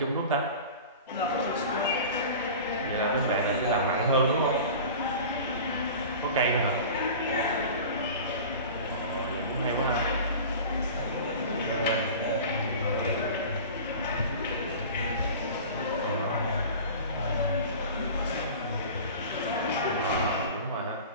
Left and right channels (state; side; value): inverted; both; correlation -0.37